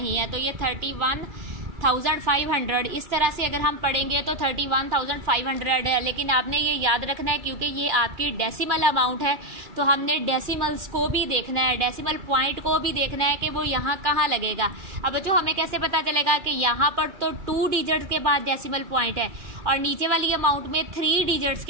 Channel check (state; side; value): late; left; 2.4 ms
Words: है, तो ये 31,500। इस तरह से अगर हम पढ़ेंगे तो 31,500 है। लेकिन आपने ये याद रखना है क्योंकि ये आपकी डेसिमल अमाउंट है, तो हमने डेसिमल्स को भी देखना है, डेसिमल पॉइंट को भी देखना है कि वो यहाँ कहाँ लगेगा। अब बच्चों हमें कैसे पता चलेगा कि यहाँ पर तो 2 डिजिट्स के बाद डेसिमल पॉइंट है और नीचे वाली अमाउंट में 3 डिजिट्स